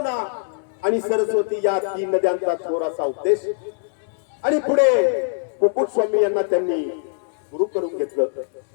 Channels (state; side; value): silent; right; digital silence